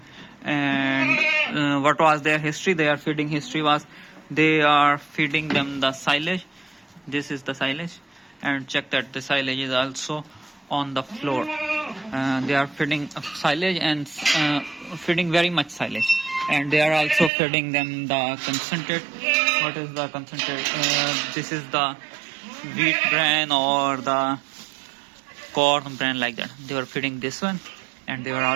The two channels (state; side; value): drops out; left; at 17.3 s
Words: And what was their history? Their feeding history was they are feeding them the silage. This is the silage, and check that the silage is also on the floor. They are feeding silage and feeding very much silage, and they are also feeding them the concentrate. What is the concentrate? This is the wheat bran or the corn bran, like that. They were feeding this one, and they were